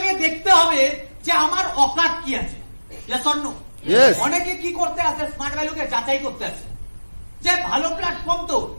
দেখতে হবে যে আমার অকাত কি আছে। Yes or no? অনেকে কি করতে আছে? স্মার্ট ভ্যালুকে যাচাই করতে আছে যে ভালো প্ল্যাটফর্ম তো,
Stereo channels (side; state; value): both; inverted; correlation -1.00